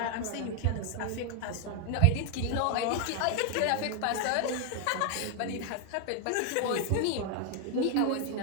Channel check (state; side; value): different; both; correlation 0.00